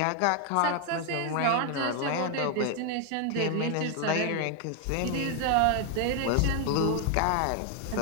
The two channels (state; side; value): different; both; correlation 0.01